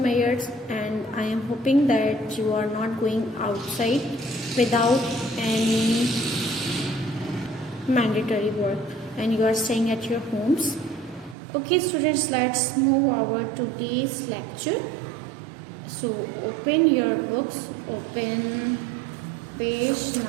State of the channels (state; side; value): drops out; left; at 11.4 s